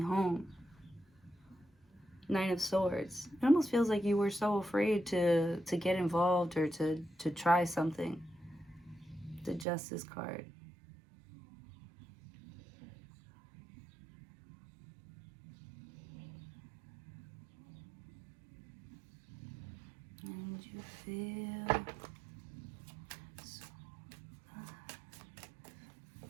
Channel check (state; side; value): drops out; left; at 9.7 s